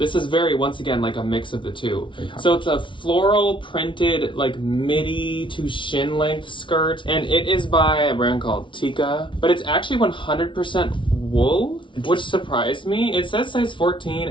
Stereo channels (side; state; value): right; late; 0.24 ms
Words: is very, once again, like a mix of the two. So it's a floral printed like midi to shin length skirt, and it is by a brand called Tika, but it's actually 100% wool, which surprised me. It says size 14,